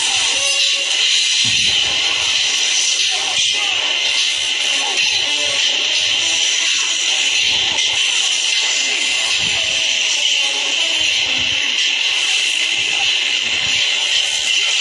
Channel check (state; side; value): identical; both; correlation 1.00